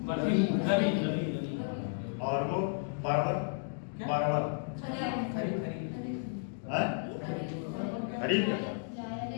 और वो परवल, परवल, खरीफ,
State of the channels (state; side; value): silent; right; digital silence